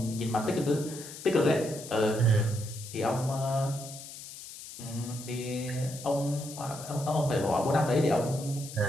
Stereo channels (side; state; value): left; noise; hiss, 13 dB below the sound